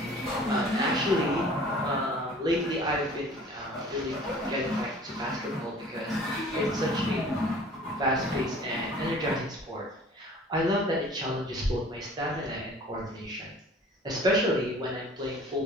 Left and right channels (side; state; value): both; normal; correlation 0.48